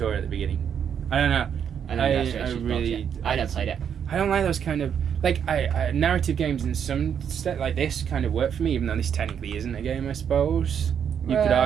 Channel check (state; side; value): quieter; left; 8.1 dB